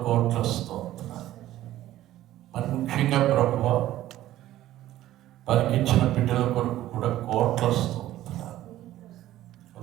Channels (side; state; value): left; quieter; 14.1 dB